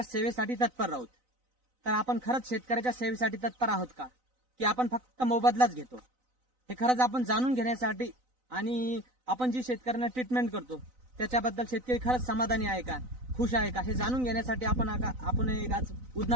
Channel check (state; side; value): late; left; 3.9 ms